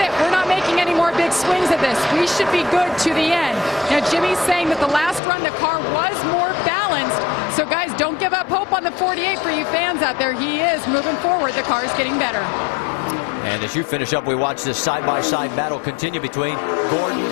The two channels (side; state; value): right; drops out; at 5.2 s